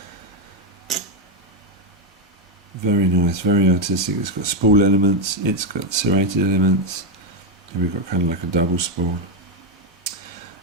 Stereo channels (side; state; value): both; normal; correlation 0.04